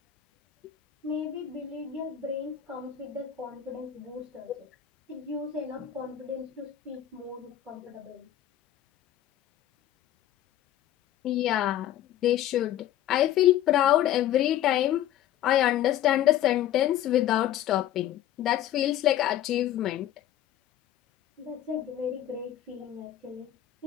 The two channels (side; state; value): right; quieter; 12.0 dB